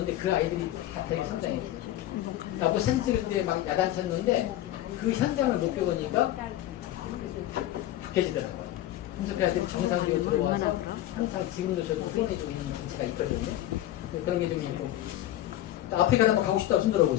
그 아이들이 다 되게 성장했어요. 나보고 사진 찍을 때 막 야단쳤는데 그 현장을 못 겪으니까 바뀌어지더라고요. 그래서 그 아이들이 정상적으로 들어와서 항상 지금도 저도 후원해주고 있는 위치가 있거든요. 그런 게 좀 있고. 아프리카 한번 가고 싶다고 손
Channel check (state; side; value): quieter; right; 13.8 dB